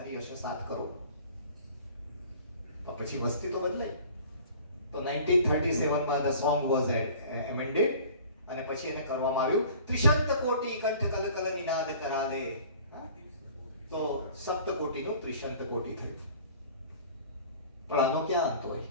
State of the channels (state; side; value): inverted; both; correlation -0.47